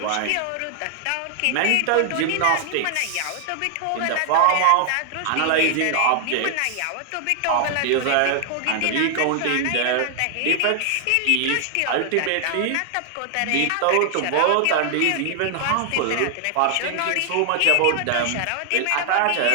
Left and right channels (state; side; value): different; both; correlation 0.00